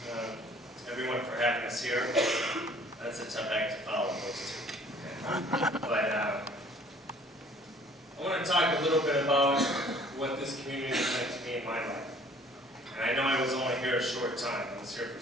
everyone for having us here. That's a tough act to follow, those two. But I want to talk a little bit about what this community has meant to me in my life. And I know I was only here a short time. I was here for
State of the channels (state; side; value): normal; both; correlation 0.55